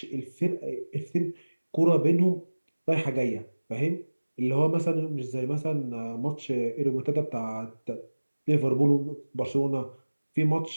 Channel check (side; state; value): both; inverted; correlation -1.00